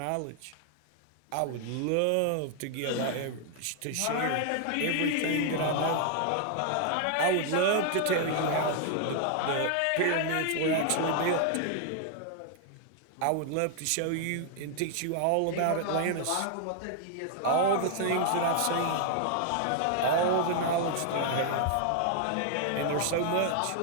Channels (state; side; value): different; both; correlation 0.00